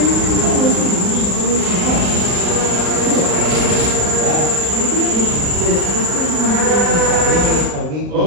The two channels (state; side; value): late; left; 37 ms